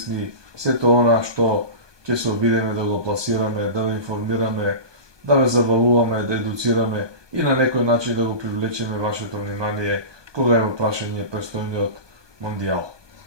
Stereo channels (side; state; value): left; late; 1.2 ms